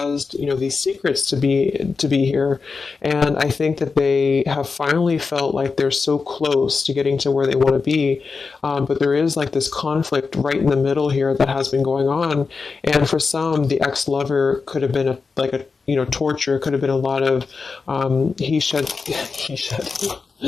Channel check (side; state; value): right; quieter; 4.7 dB